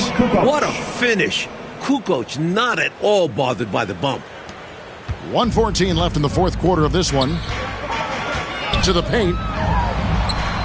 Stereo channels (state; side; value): identical; both; correlation 1.00